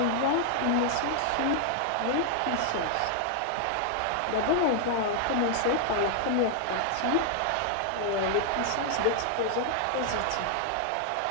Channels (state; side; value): different; both; correlation 0.00